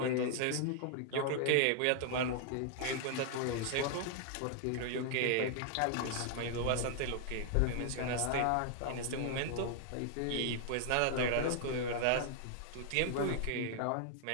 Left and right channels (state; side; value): different; both; correlation -0.01